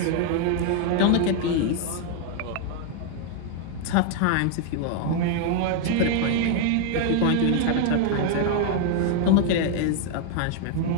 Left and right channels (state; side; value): different; both; correlation 0.00